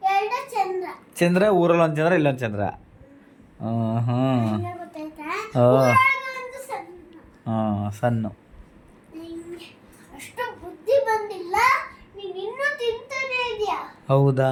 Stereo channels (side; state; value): both; identical; correlation 1.00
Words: ಚಂದ್ರ. ಚಂದ್ರ ಊರಲ್ಲಿ ಒಂದು ಚಂದ್ರ, ಇಲ್ಲೊಂದು ಚಂದ್ರ. ಹಂಗೆ ಗೊತ್ತಾಯ್ತಾ? ಓ. ಊರಾಗ ಒಂದು ಸಣ್ಣ. ಸಣ್ಣ. ನಿಂಗೆ ಅಷ್ಟು ಬುದ್ಧಿ ಬಂದಿಲ್ಲ, ನೀನು ಇನ್ನೂ ತಿಂತಾನೆ ಇದೆಯಾ? ಹೌದಾ,